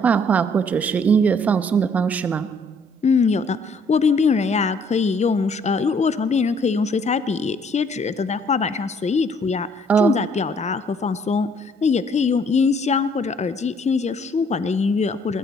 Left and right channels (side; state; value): both; normal; correlation 0.63